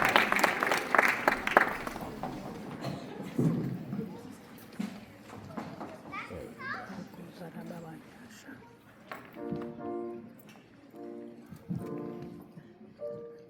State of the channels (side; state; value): both; identical; correlation 1.00